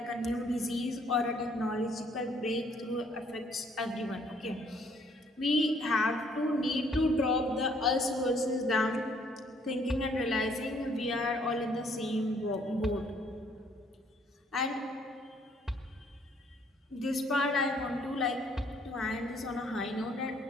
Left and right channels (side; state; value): both; normal; correlation 0.64